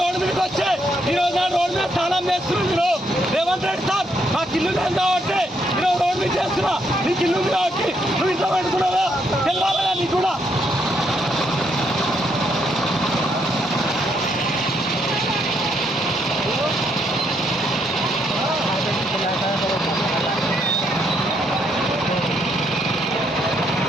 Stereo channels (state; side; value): normal; both; correlation 0.75